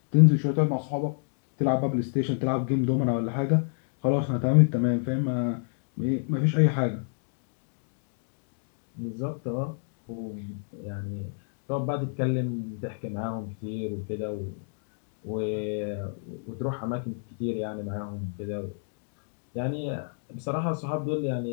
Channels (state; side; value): silent; right; digital silence